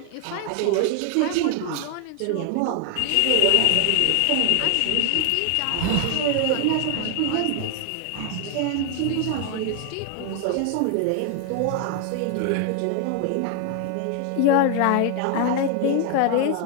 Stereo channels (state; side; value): different; both; correlation 0.00